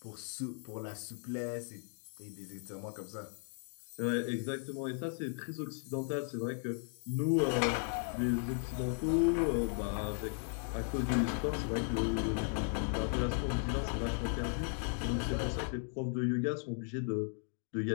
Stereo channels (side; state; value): right; silent; 54 dB below the other